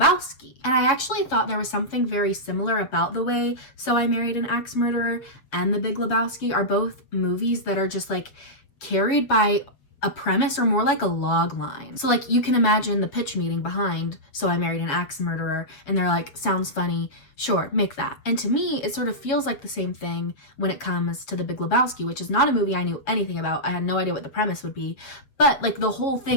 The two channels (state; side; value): late; right; 7.6 ms